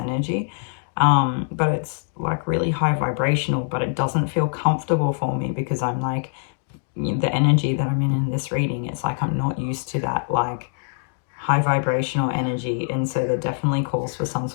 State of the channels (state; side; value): silent; right; digital silence